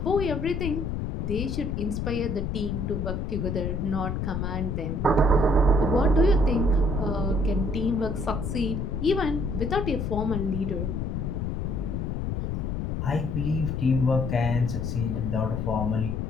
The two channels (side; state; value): left; noise; rumble, 2 dB below the sound